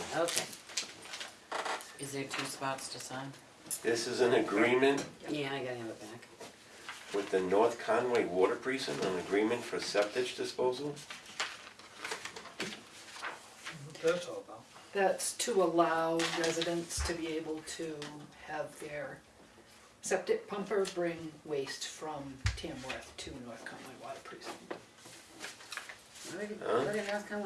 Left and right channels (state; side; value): identical; both; correlation 1.00